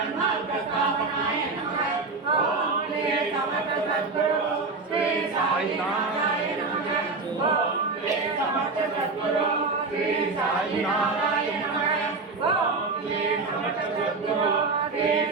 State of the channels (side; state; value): left; quieter; 3.9 dB